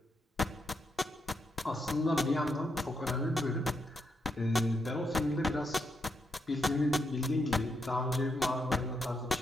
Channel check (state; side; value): normal; both; correlation 0.81